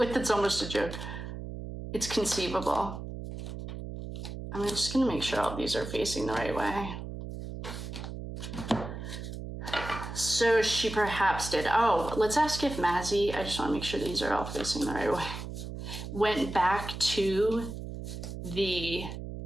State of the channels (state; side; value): noise; right; hum, 8 dB below the sound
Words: that's almost a joke. It's conceivable. I'm just going to make sure all these are facing the right way. So she perhaps did. Oh, let's ask if Maizie, I just want to make sure these are all facing the right way, went back to the